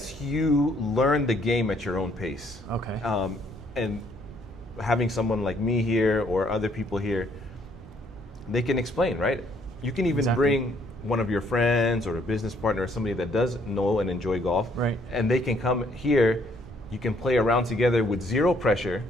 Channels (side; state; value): both; normal; correlation 0.66